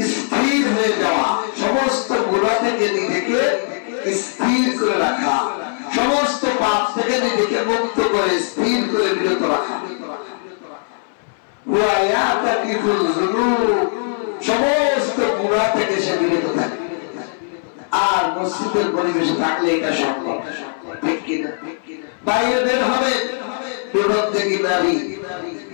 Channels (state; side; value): silent; right; 61 dB below the other